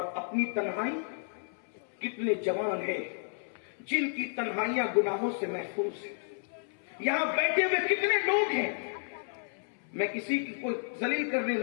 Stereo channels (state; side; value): silent; right; 57 dB below the other